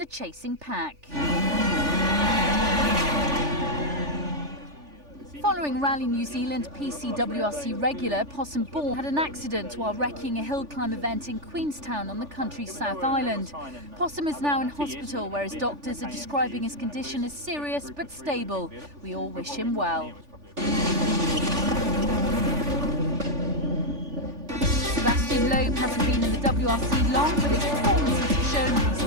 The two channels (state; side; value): late; left; 3.4 ms